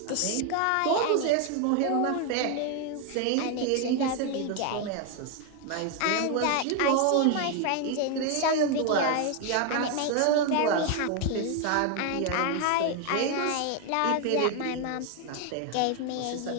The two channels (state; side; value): different; both; correlation 0.01